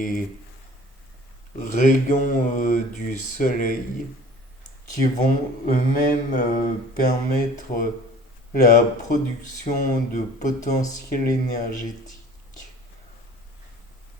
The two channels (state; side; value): normal; both; correlation 0.46